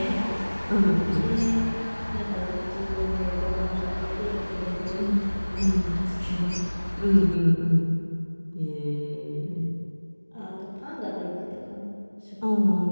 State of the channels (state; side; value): inverted; both; correlation -1.00